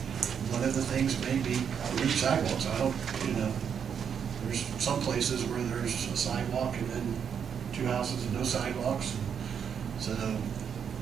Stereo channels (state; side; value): quieter; left; 7.5 dB